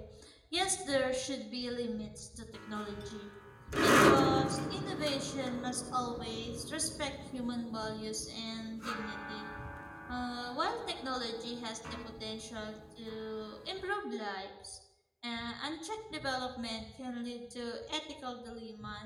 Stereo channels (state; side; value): identical; both; correlation 1.00